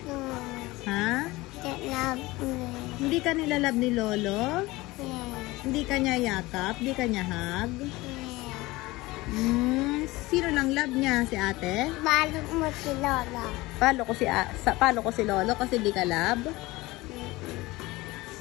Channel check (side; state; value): right; quieter; 20.5 dB